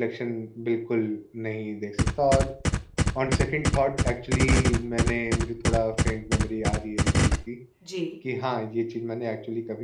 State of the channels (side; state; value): both; identical; correlation 1.00